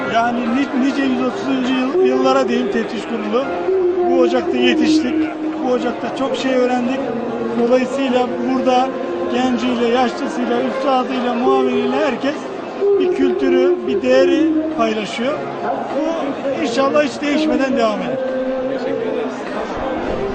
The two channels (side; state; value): both; identical; correlation 1.00